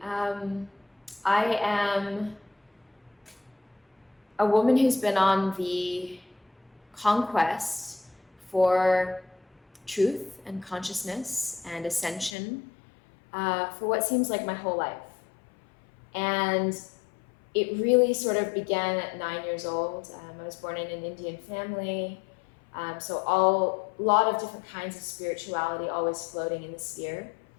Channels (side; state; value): right; drops out; at 12.4 s